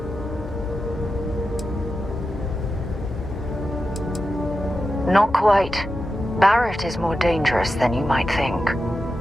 Not quite. Barrett is more dangerous than you might think.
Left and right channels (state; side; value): normal; both; correlation 0.90